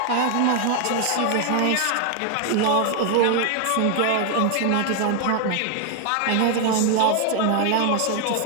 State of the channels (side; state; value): both; different; correlation 0.00